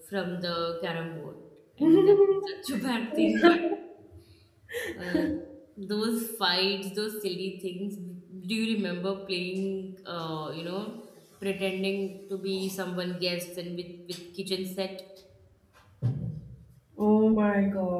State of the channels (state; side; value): identical; both; correlation 1.00